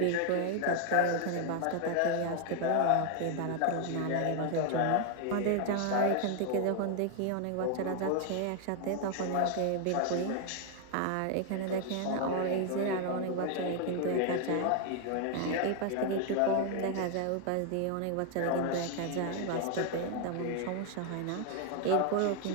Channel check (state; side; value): different; both; correlation 0.00